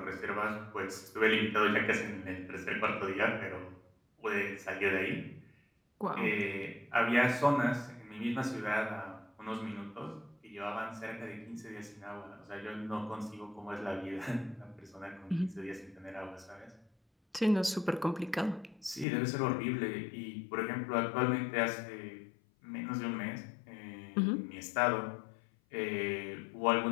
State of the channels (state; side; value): drops out; right; at 19.1 s